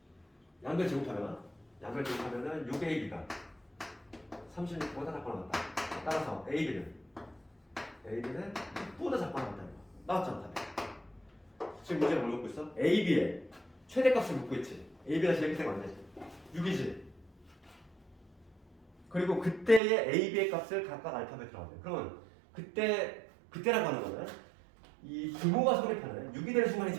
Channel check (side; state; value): left; drops out; at 19.8 s